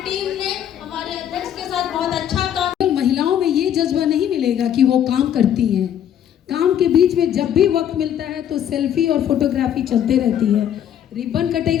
ने हमारे अध्यक्ष के साथ बहुत अच्छा काम। महिलाओं में ये जज्बा नहीं मिलेगा कि वो काम करती हैं, काम के बीच में जब भी वक्त मिलता है तो सेल्फी और फोटोग्राफी चलते रहती है। रिबन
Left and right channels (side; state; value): right; quieter; 9.9 dB